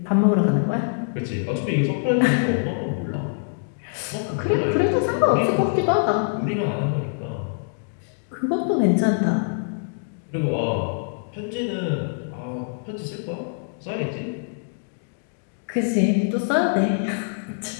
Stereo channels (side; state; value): right; silent; digital silence